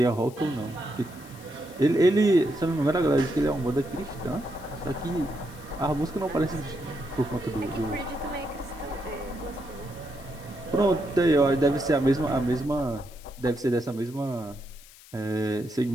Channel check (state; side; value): noise; left; hiss, 21 dB below the sound